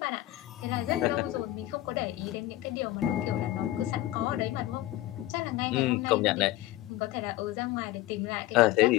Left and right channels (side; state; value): right; quieter; 16.0 dB